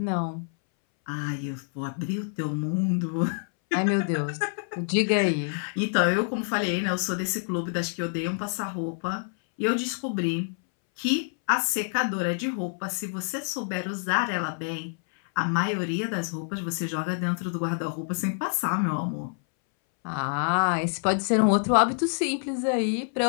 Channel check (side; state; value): right; silent; 60 dB below the other